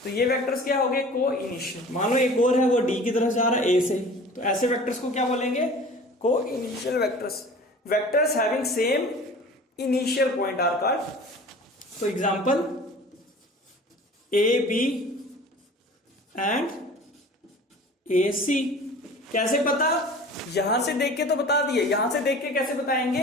तो ये वेक्टर्स क्या हो गए, को इनिशियल। मान लो एक और है, वो डी की तरफ जा रहा है ए से, तो ऐसे वेक्टर्स को क्या बोलेंगे, coinitial vectors. Vectors having same initial point are called, तो example A B and A C. कैसे पता, यहां से देख के तो बता दिए, यहां से देख के कैसे बताएंगे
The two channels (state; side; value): normal; both; correlation 0.42